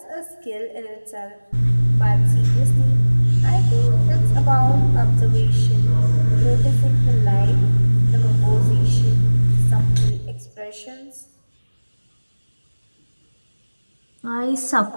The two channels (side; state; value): both; inverted; correlation -1.00